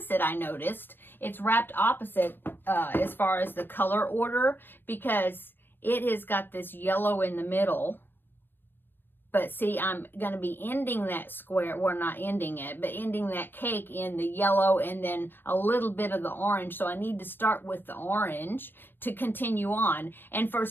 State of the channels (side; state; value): right; late; 0.096 ms